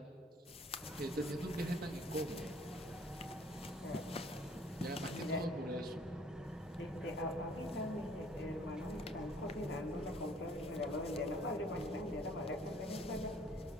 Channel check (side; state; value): both; normal; correlation 0.57